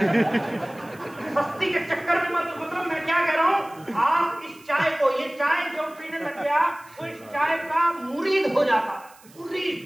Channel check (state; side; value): noise; right; hiss, 25 dB below the sound